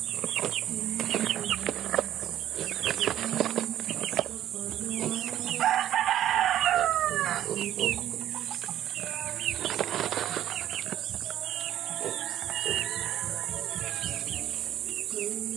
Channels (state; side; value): quieter; left; 11.9 dB